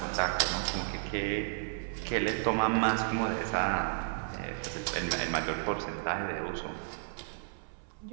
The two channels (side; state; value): left; silent; 56 dB below the other